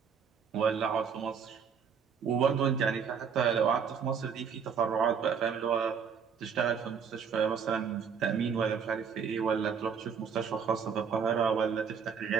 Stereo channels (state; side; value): quieter; left; 6.7 dB